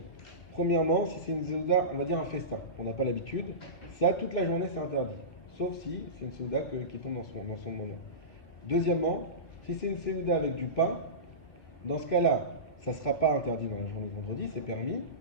premièrement, si c'est une Seuda, on va dire un festin, on n'a pas l'habitude, ça, toute la journée, c'est interdit. Sauf si c'est une Seuda qui tombe dans son moment. Deuxièmement, si c'est une Seuda avec du pain, dans ce cas-là, ça ne sera pas interdit dans la journée de vendredi, c'est permis.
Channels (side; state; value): right; late; 2.8 ms